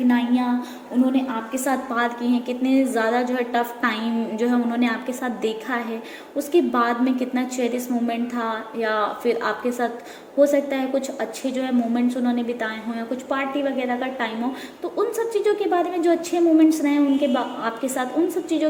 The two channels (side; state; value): both; identical; correlation 1.00